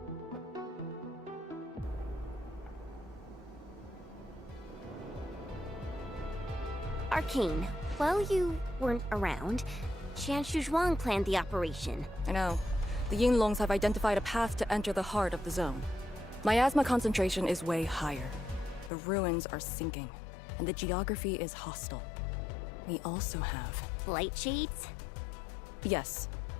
Arcane, while you weren't around, Qian Shuzhuang planned the operation. I know. The Yinglongs have identified a path to enter the heart of the zone. Miasma concentration is way higher. The ruins are sinking, and the geography is hostile. We also have... Light shades? Yes.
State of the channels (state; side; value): drops out; right; at 18.9 s